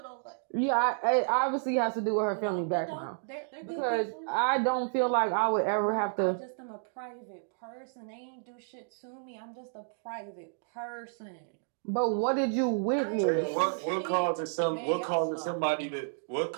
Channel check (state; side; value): silent; left; digital silence